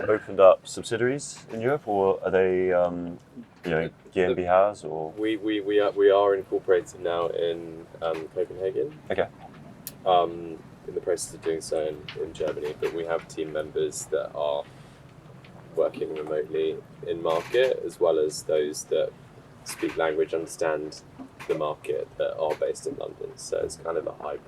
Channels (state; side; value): identical; both; correlation 1.00